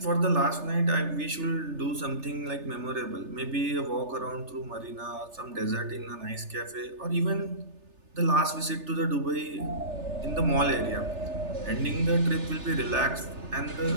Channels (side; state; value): left; late; 3.3 ms